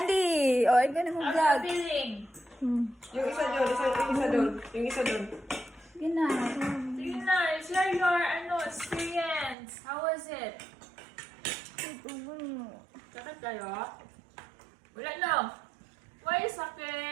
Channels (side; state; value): left; drops out; at 9.6 s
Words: O, ay ganun mo vlog. Feeling. Yung isa doon, yung isa doon, yung isa doon. Yun na. Sige na, share your experience. How was it? Sakit kayo? Wala no. Why